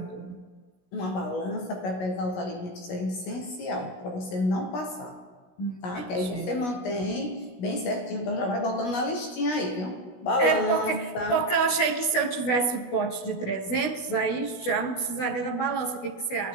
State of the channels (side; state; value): right; late; 16 ms